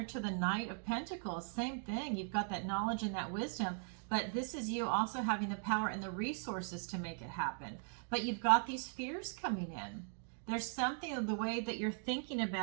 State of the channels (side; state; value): left; silent; 52 dB below the other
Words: to the Knight of Pentacles. Same thing. You've got that knowledge and that wisdom, but this is you also having the power and the resources to make it happen. But you've got these fears coming in. There's something of the way that you're thinking